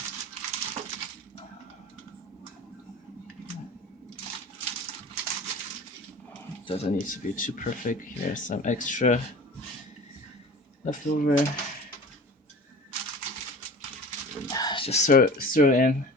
Doesn't need to be too perfect. Here's some extra leftover. Just throw in.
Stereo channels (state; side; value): normal; both; correlation 0.39